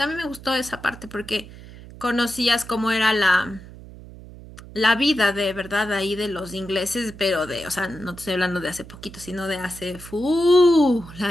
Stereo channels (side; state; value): right; noise; hum, 17 dB below the sound